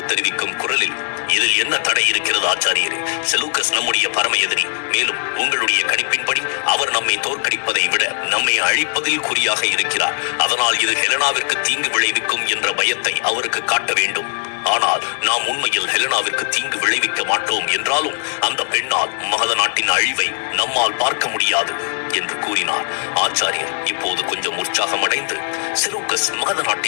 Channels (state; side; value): silent; right; digital silence